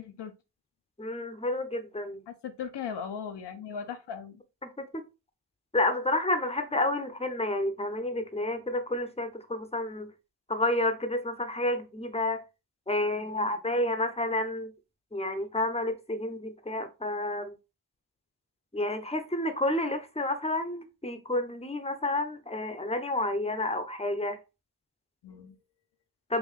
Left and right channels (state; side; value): normal; both; correlation 0.05